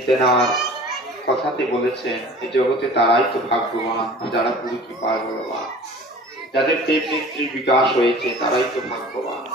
তেনার কথাতে বলেছেন এই জগতে তারাই তো ভাগ্যবান যারা গুরু কৃপার বলবান, যাদের প্রেম নেত্রীর বিকাশ হয়েছে তারাই তো ভাগ্যবান।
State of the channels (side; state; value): both; normal; correlation 0.43